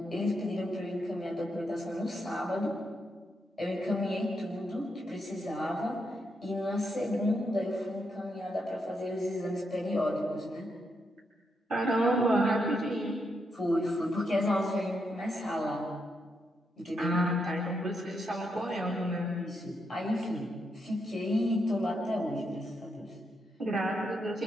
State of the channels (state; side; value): normal; both; correlation 0.81